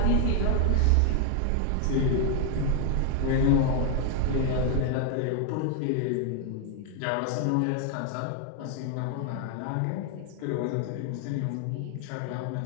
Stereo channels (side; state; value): both; different; correlation 0.00